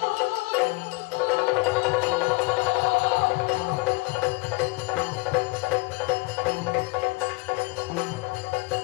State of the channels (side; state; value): right; quieter; 25.2 dB